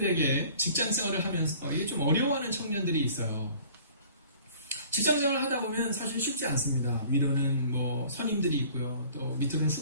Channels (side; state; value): both; inverted; correlation -0.49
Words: 직장 생활을 하면서 이게 좀 어려워하는 청년들이 있어요. 직장 생활을 하다 보면 사실 쉽지 않습니다. 위로는 뭐 선임들이 있고요. 또 밑으로는